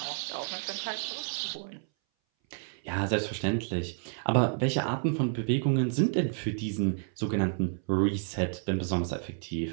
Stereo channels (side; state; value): left; silent; 58 dB below the other